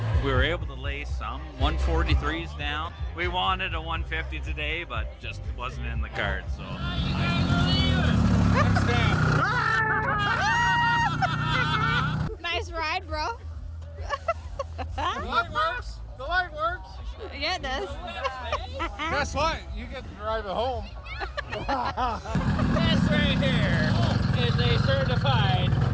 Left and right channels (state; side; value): identical; both; correlation 1.00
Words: We were able to lay some 143s down. We wanted a 150 today, but just wasn't in the cards. So. Nice ride, bro. The light works. The light works. Yeah, it does. Guess what? You get to drive it home. This right here is a certified